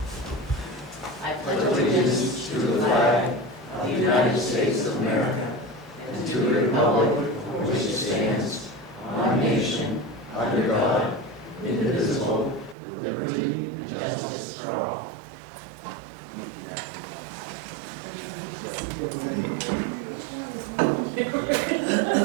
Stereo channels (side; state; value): left; drops out; at 12.8 s